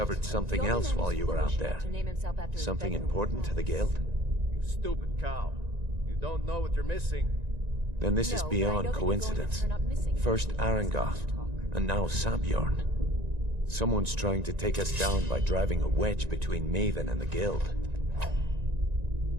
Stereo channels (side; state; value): left; late; 1.9 ms